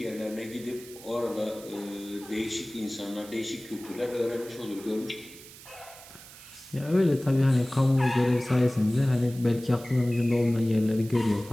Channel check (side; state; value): right; noise; hiss, 18 dB below the sound